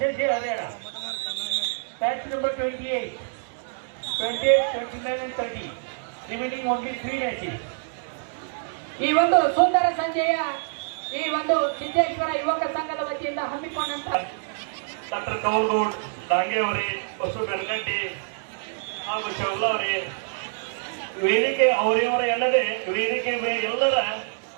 Harera. Match number 28, 29 and 30. Remaining only 3 matches. ಈ ಒಂದು ಸುಂದರ ಸಂಜೆಯ ಈ ಒಂದು ಸಿದ್ದೇಶ್ವರ ಯುವಕ ಸಂಘದ ವತಿಯಿಂದ ಹಮ್ಮಿಕೊಂಡಂತ ಡಾಕ್ಟರ್ ಕೌಲ್ಗೌಡ್ ಡಾಂಗೆ ಅವರೇ, ಬಸು ಬೆಳಗಂಡಿ ಹಾಗೂ ಶೌಲ ಅವರೇ, ವೇದಿಕೆ ಅವರಿವರ ಎಲ್ಲದೆ ವೇದಿಕೆ ಎಲ್ಲರ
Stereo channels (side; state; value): left; silent; digital silence